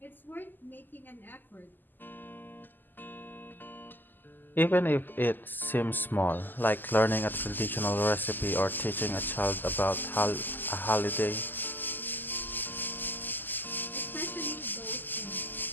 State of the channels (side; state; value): right; late; 0.089 ms